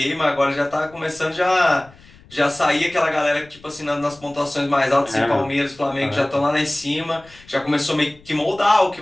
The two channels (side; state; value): left; noise; rumble, 25 dB below the sound